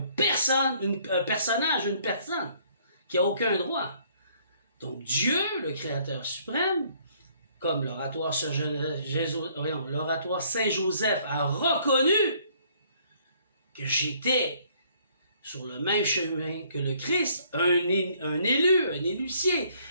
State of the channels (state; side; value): inverted; both; correlation -0.63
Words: personnage, une personne, qui n'a aucun droit. Donc, Dieu, le Créateur suprême, comme l'oratoire Saint-Joseph a reconnu que j'étais sur le même chemin que le Christ, un élu, un élucier,